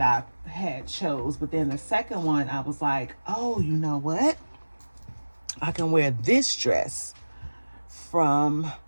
I had chose. But then the second one, I was like, oh, you know what? I can wear this dress from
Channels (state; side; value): inverted; both; correlation -1.00